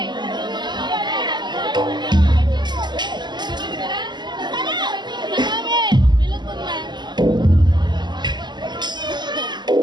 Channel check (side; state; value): left; late; 0.21 ms